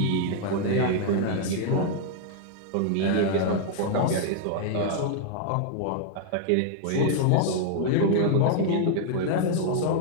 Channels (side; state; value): both; different; correlation -0.01